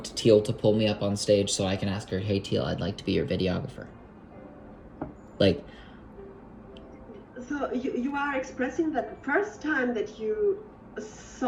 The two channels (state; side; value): identical; both; correlation 1.00